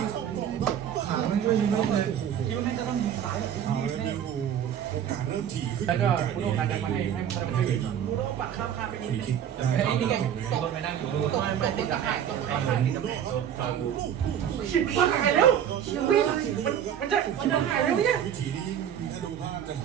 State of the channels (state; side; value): quieter; left; 9.5 dB